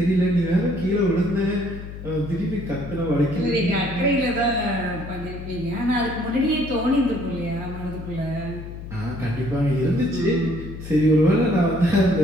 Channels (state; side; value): noise; left; hum, 11 dB below the sound